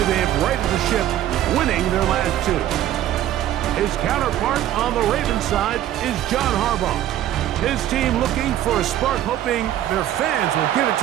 they have righted the ship, winning their last two. His counterpart on the Ravens side is John Harbaugh. His team looking for a spark, hoping their fans will give it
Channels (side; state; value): left; quieter; 12.3 dB